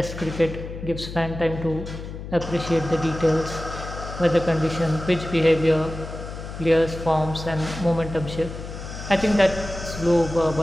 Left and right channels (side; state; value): left; noise; hum, 10 dB below the sound